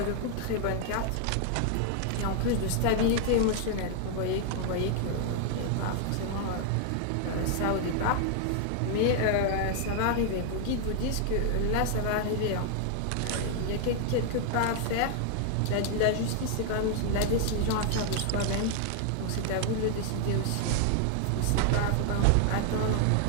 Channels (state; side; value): different; both; correlation 0.00